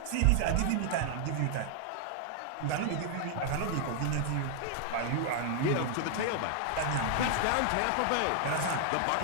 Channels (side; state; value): both; different; correlation 0.00